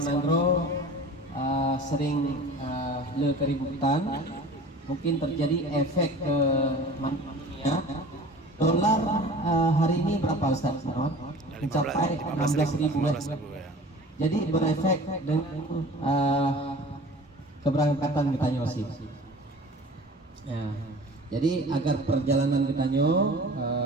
sering keributan. Mungkin terjadi efek ke dunia. Dolar hari ini berapa Ustaz? Mencapai 16.000 ya. Jadi berefek dengan keberangkatan kita nyosi. Ya. Jadi agar perjalanan kita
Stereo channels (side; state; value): both; normal; correlation 0.42